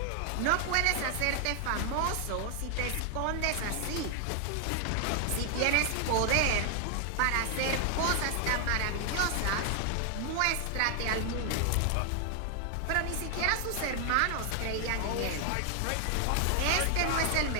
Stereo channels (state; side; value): different; both; correlation 0.00